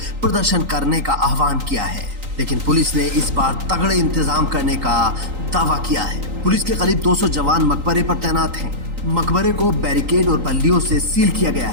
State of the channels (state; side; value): late; left; 3.9 ms